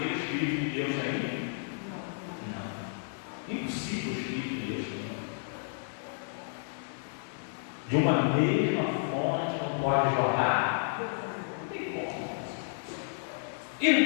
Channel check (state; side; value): silent; right; 57 dB below the other